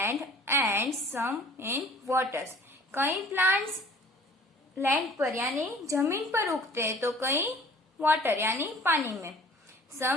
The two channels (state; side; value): normal; both; correlation 0.50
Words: and some in waters. कई plants land पर यानी जमीन पर उगते हैं तो कई water यानी पानी में.